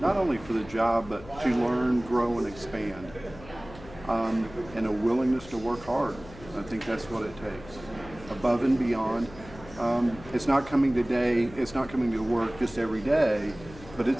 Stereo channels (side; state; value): left; noise; hum, 18 dB below the sound